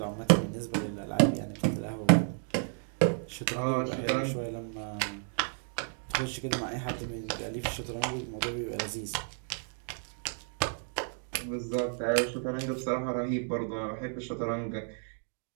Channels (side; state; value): left; silent; 56 dB below the other